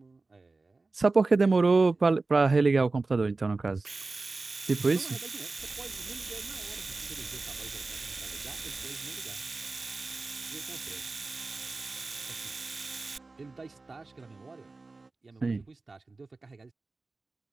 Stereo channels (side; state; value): left; quieter; 3.6 dB